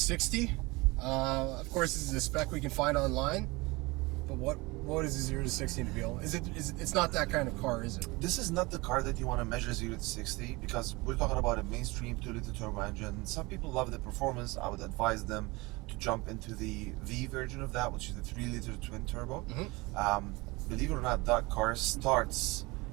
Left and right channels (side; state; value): left; quieter; 23.8 dB